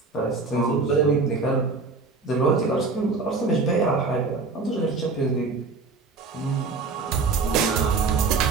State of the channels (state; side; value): quieter; left; 4.2 dB